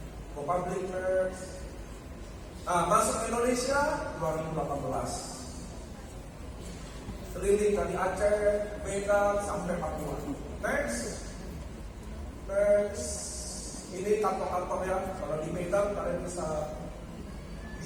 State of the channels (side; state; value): both; identical; correlation 1.00